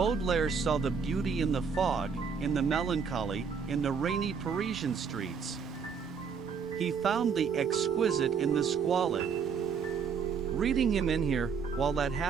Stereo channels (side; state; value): left; quieter; 6.2 dB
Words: saw the beauty in the fog, in the melancholy, in the rainy Parisian streets. He found the exquisite in the squalid. Reading him in here, while that